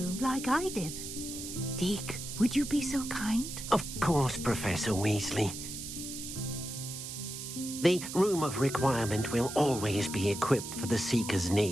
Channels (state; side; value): noise; right; hiss, 8 dB below the sound